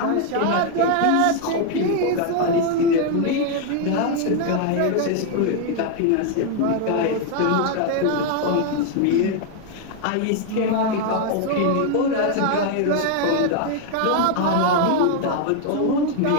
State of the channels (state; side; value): different; both; correlation 0.00